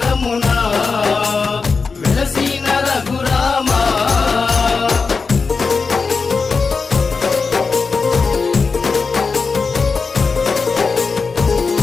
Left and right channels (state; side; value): quieter; right; 4.7 dB